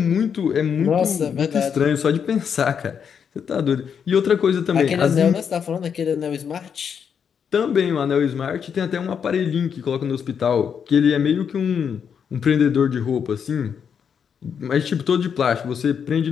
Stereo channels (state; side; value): quieter; right; 7.3 dB